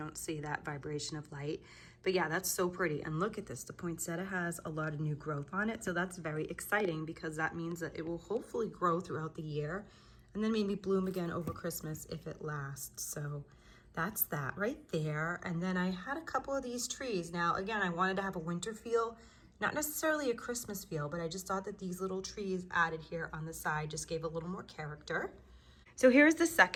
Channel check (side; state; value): both; identical; correlation 1.00